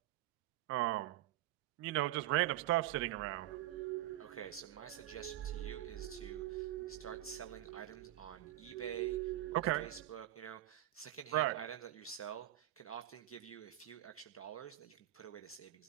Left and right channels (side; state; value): left; quieter; 14.6 dB